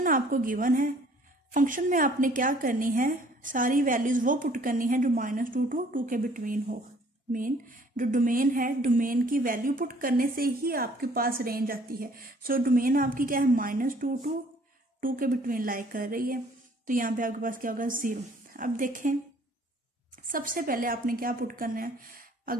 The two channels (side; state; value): both; normal; correlation 0.58